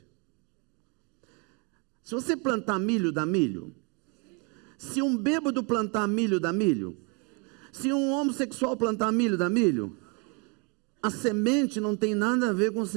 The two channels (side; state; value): left; quieter; 31.7 dB